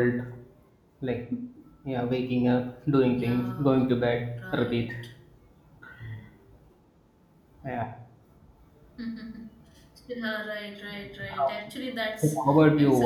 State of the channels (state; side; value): identical; both; correlation 1.00